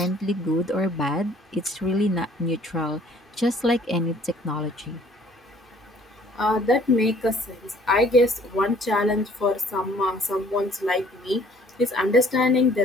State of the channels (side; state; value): both; normal; correlation 0.57